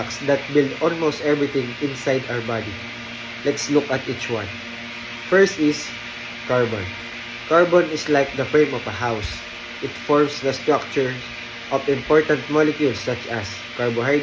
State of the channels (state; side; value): identical; both; correlation 1.00